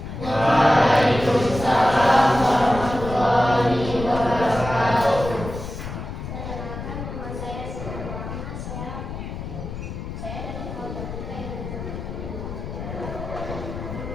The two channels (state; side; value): noise; left; rumble, 8 dB below the sound